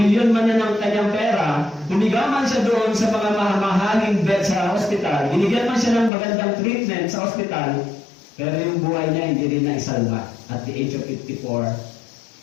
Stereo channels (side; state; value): right; drops out; at 6.1 s